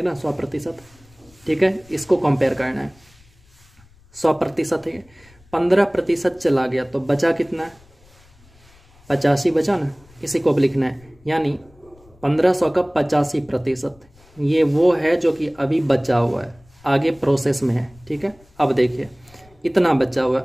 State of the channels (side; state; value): left; noise; rumble, 28 dB below the sound